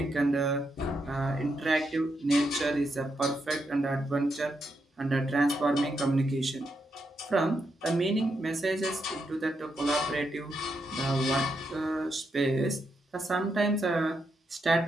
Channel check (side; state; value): both; normal; correlation 0.82